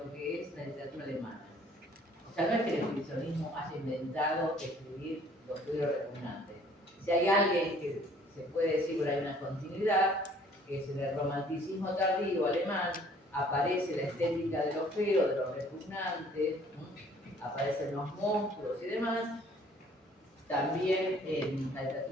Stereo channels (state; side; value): normal; both; correlation 0.57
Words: que es la literatura alemana. O sea, no es que el expresionismo haya inventado escribir lo feo repugnante. Si hay alguien que se puede decir que hay una continuidad, que es en el romanticismo tardío alemán, aparece la estética de lo feo, de lo repugnante, ¿no? Aparecen los monstruos y demás. También en la